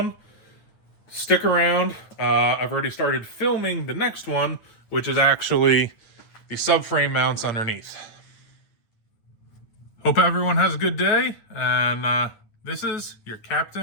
Stick around. I've already started filming the next one, which is actually the subframe mounts underneath. Hope everyone has a good day, and this is your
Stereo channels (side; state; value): right; late; 9.6 ms